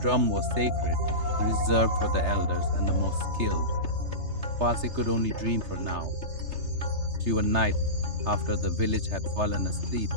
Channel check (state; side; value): late; left; 3.3 ms